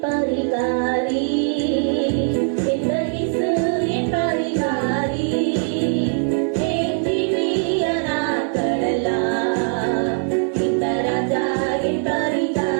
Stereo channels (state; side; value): silent; left; 61 dB below the other